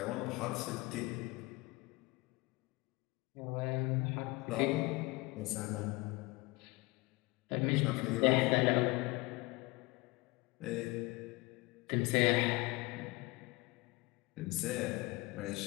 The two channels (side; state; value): right; quieter; 24.1 dB